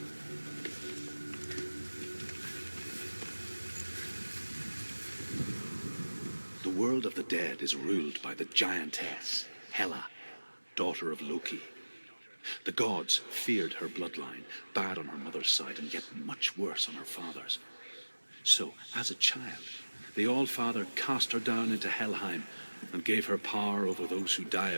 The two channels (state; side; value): inverted; both; correlation -1.00